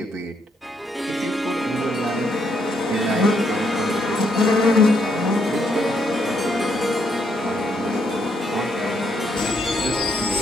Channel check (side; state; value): both; normal; correlation 0.75